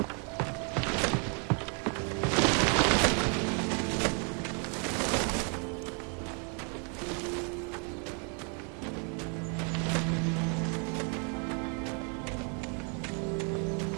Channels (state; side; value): quieter; left; 38.2 dB